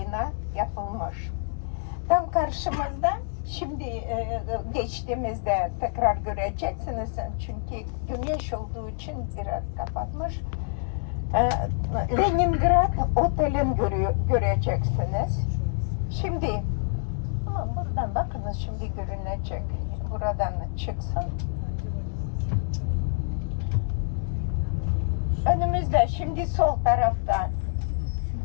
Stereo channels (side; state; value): right; silent; 60 dB below the other